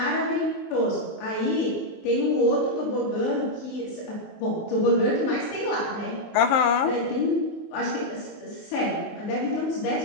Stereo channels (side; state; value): right; late; 19 ms